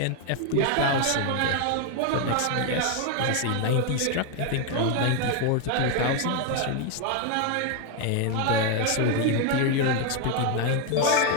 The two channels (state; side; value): different; both; correlation 0.01